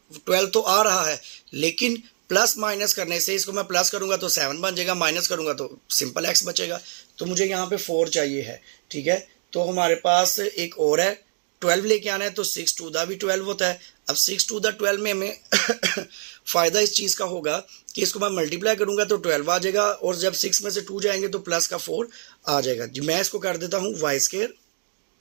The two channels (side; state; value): left; silent; digital silence